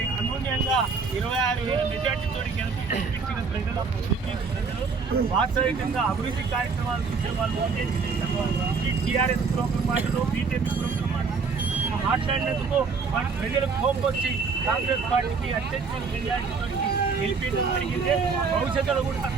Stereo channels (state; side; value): quieter; left; 5.0 dB